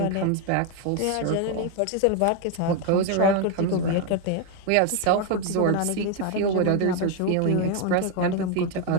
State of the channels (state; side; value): different; both; correlation 0.01